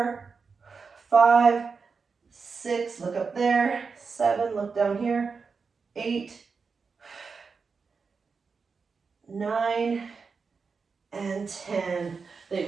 5, 6, look up there. 7, look down here. 8, 9, and 10. I think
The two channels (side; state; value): left; quieter; 5.1 dB